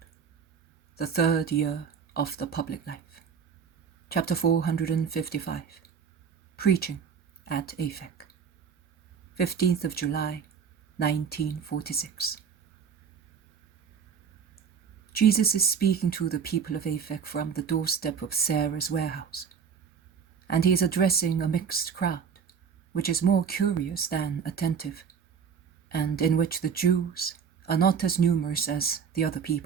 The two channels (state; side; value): quieter; left; 6.8 dB